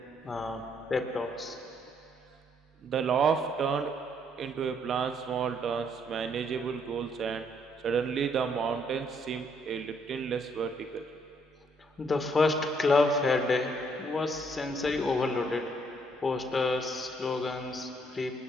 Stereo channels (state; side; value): normal; both; correlation 0.69